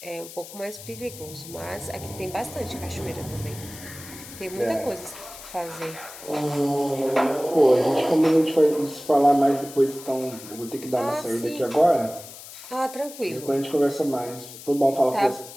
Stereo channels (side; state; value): left; noise; hiss, 15 dB below the sound